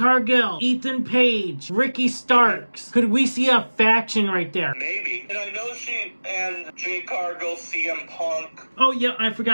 Ethan Page, Ricky Starks. Could we see a faction right there? Maybe. And I know she and Jade Cargill, CM Punk. Oh yeah, I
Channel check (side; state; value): both; inverted; correlation -1.00